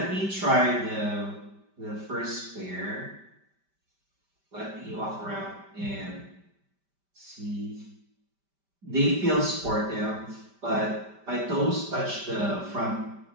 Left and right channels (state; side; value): late; left; 5.1 ms